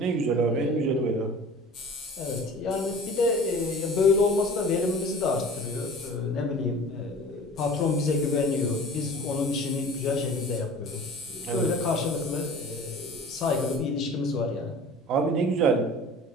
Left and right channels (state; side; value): normal; both; correlation 0.42